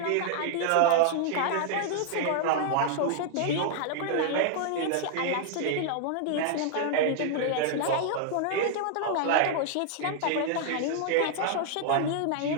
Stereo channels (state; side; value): different; both; correlation -0.01